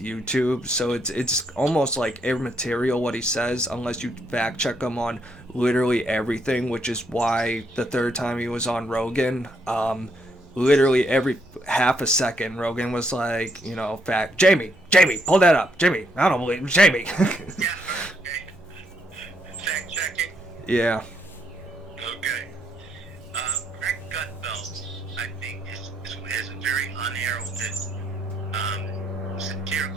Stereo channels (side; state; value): both; normal; correlation 0.74